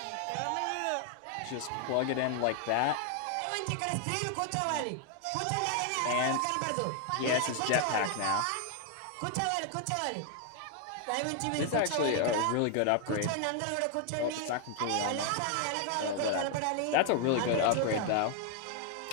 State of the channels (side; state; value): both; different; correlation 0.00